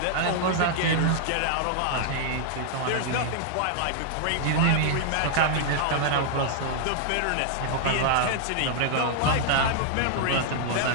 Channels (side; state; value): both; different; correlation -0.01